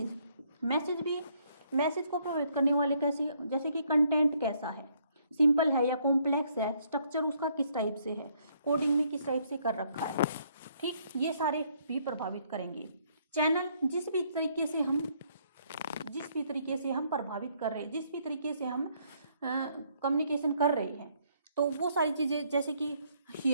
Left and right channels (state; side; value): inverted; both; correlation -0.68